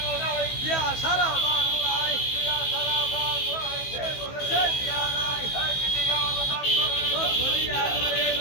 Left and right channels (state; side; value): late; right; 15 ms